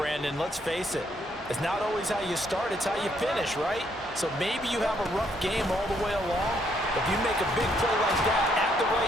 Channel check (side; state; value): both; normal; correlation 0.71